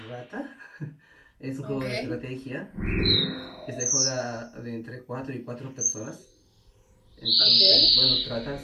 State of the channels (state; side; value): identical; both; correlation 1.00